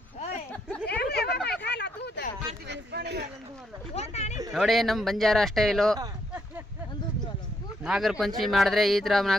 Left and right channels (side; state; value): both; normal; correlation 0.75